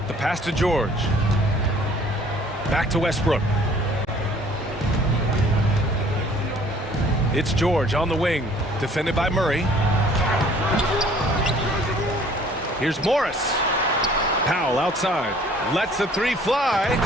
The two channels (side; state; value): both; normal; correlation 0.55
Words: the pass to George. Back to Westbrook. It's George on the wing, defended by Murray. Here's Morris. Powell outside. Lets the three fly.